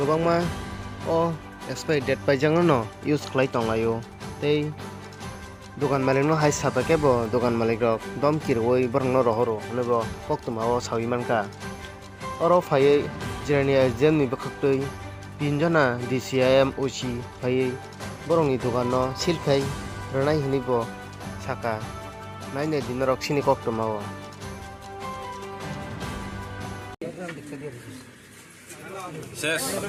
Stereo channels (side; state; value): both; identical; correlation 1.00